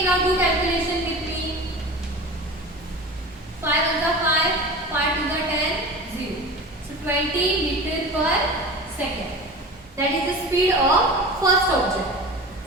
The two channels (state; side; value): normal; both; correlation 0.33